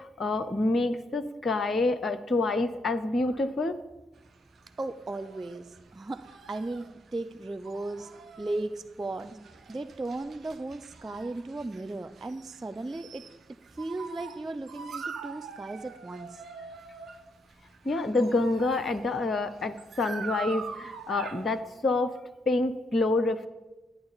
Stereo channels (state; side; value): normal; both; correlation 0.76